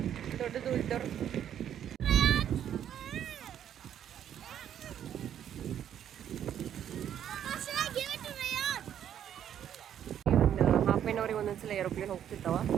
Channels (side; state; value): left; quieter; 9.9 dB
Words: ದೊಡ್ಡದು ಇದ್ದವ್ರು. ಹಾಫ್ ಆನ್ ಅವರಿಗೆ ಒಂದೊಂದ್ಸಲ ಏರೋಪ್ಲೇನ್ ಹೋಗ್ತಿರ್ತಾವ.